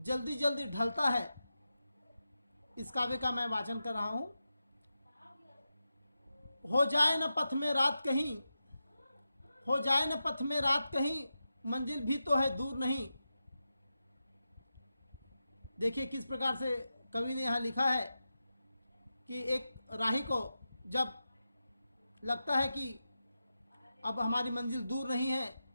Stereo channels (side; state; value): both; inverted; correlation -0.91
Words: जल्दी ढलता है, इस काव्य का मैं वाचन कर रहा हूं। हो जाए न पथ में रात कहीं, हो जाए न पथ में रात कहीं, मंजिल भी तो है दूर नहीं। देखिए किस प्रकार से कवि ने यहां लिखा है कि एक राही को जब लगता है कि अब हमारी मंजिल दूर नहीं है